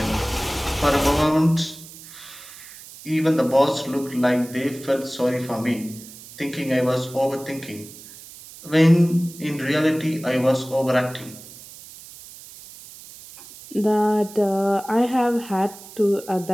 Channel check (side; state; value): right; noise; hiss, 17 dB below the sound